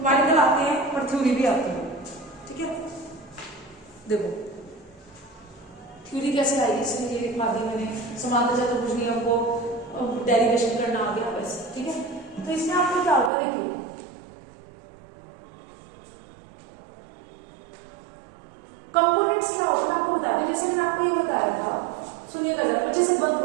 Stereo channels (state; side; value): drops out; left; at 13.3 s